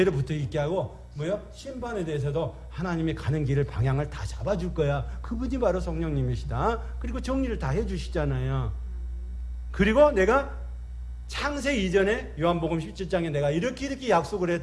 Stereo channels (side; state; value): both; identical; correlation 1.00